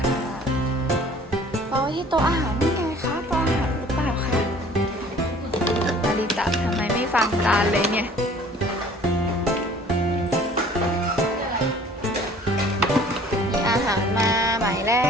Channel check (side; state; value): both; normal; correlation 0.52